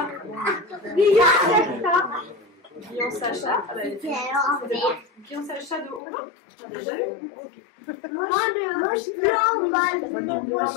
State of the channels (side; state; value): right; drops out; at 6.0 s